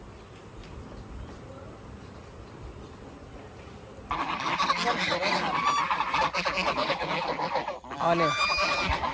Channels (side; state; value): both; identical; correlation 1.00